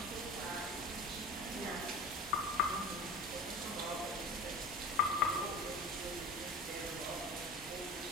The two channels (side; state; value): both; normal; correlation 0.34